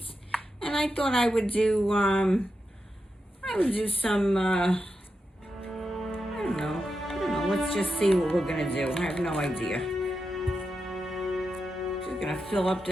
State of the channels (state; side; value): normal; both; correlation 0.88